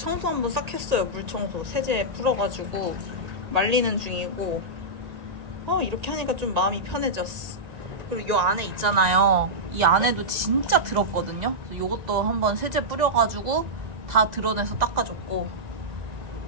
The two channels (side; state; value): left; late; 2.0 ms